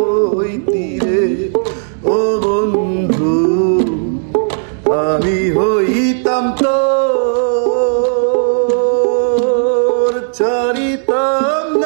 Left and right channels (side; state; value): left; silent; digital silence